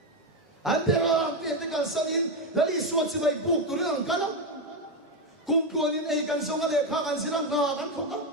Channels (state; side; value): normal; both; correlation 0.09